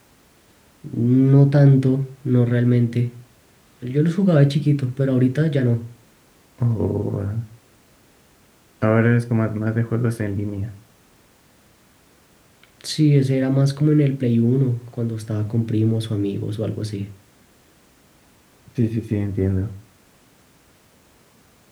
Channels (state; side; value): identical; both; correlation 1.00